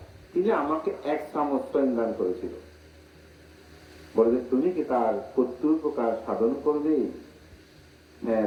তিনি আমাকে এক চামচ দান করেছিল। বলে, তুমি কি তার প্রত্যুপকার সাধন করবে? হ্যাঁ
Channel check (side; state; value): both; identical; correlation 1.00